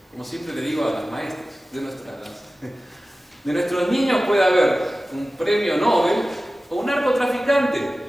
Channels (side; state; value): both; normal; correlation 0.96